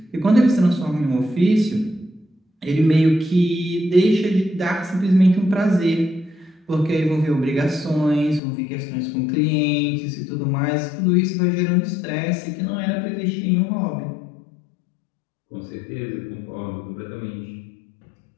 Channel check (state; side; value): drops out; right; at 8.4 s